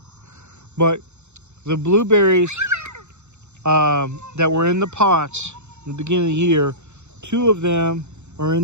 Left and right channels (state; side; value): late; left; 0.83 ms